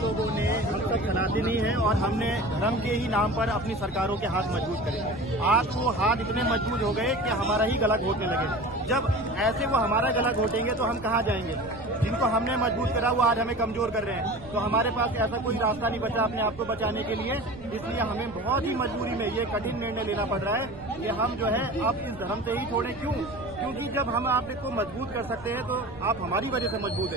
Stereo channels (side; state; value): right; noise; rumble, 18 dB below the sound